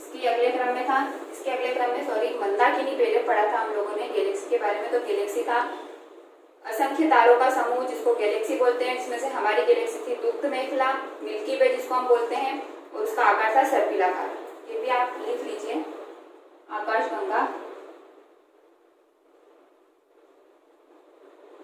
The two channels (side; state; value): both; identical; correlation 1.00